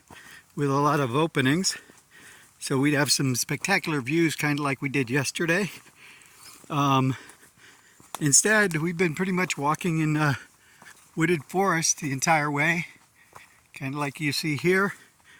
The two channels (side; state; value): both; identical; correlation 1.00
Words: with a lot of openings, so we'd have some spectacular views, kind of like we did yesterday. Instead, we've been pretty much walking in wooded forest the entire way, kind of like you see here.